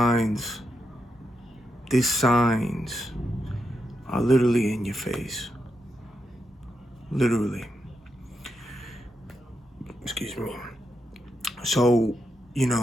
are literally in your face. Literally. Excuse me. So, you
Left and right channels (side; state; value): both; normal; correlation 0.84